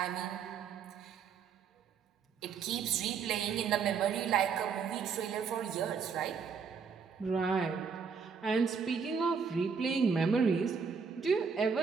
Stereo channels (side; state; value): left; quieter; 6.0 dB